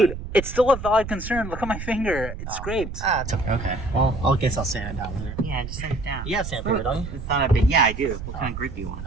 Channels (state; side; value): noise; right; rumble, 8 dB below the sound